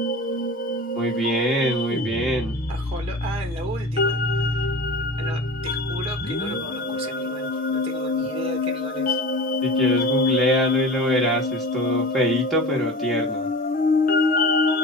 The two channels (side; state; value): both; normal; correlation 0.33